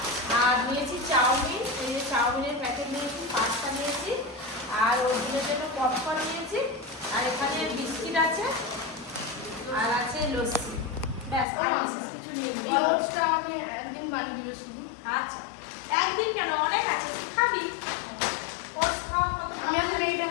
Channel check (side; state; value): right; drops out; at 11.5 s